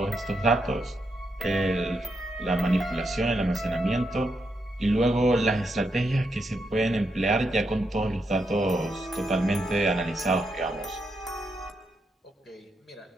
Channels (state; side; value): normal; both; correlation 0.82